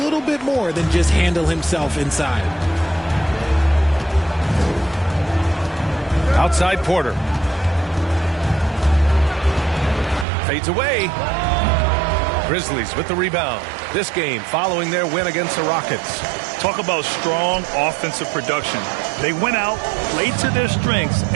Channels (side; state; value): left; drops out; at 10.2 s